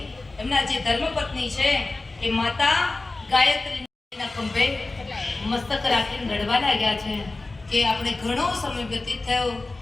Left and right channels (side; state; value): right; quieter; 3.2 dB